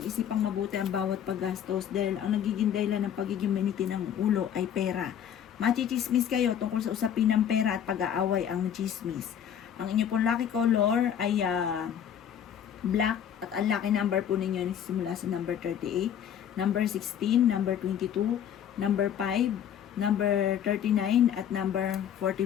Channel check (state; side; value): quieter; right; 9.2 dB